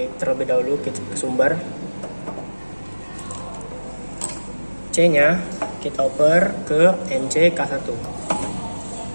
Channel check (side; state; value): both; inverted; correlation -1.00